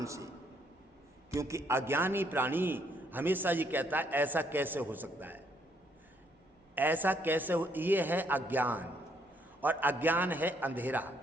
से, क्योंकि अज्ञानी प्राणी हमेशा ये कहता है ऐसा कैसे हो सकता है, ऐसा कैसे हो। ये है अज्ञान, और अज्ञान है अंधेरा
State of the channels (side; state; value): both; normal; correlation 0.70